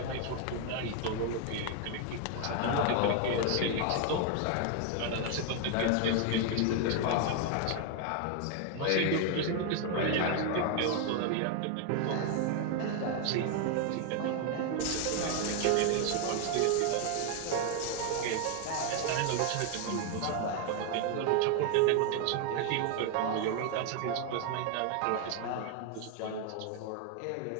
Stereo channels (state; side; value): different; both; correlation 0.01